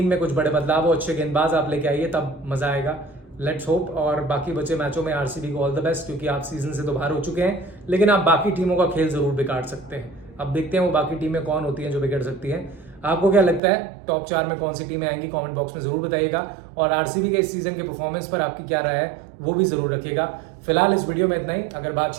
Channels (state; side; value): drops out; left; at 13.6 s